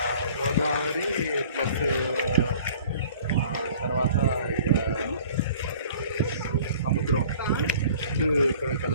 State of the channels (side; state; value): both; inverted; correlation -0.50